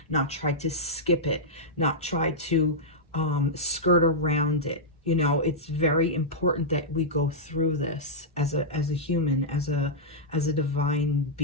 not try to skip it, not try to skirt around it. You know, it's very important that we go through this as a human, as a divine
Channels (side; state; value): both; normal; correlation -0.10